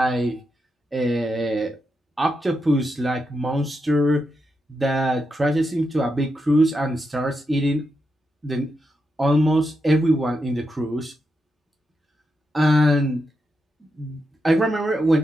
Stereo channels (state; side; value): normal; both; correlation 0.85